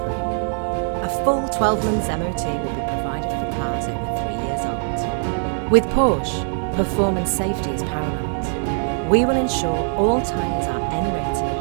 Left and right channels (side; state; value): left; silent; 64 dB below the other